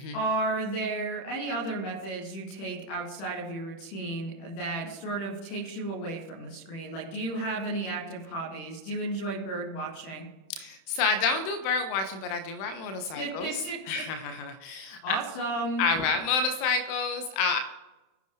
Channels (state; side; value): late; right; 31 ms